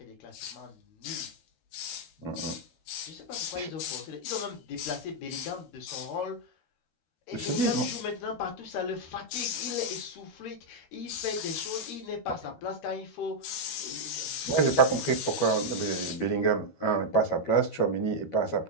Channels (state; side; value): late; right; 13 ms